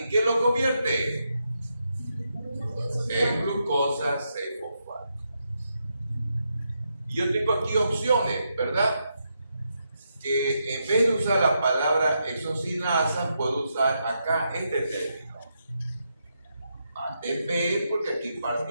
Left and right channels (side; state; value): both; inverted; correlation -0.82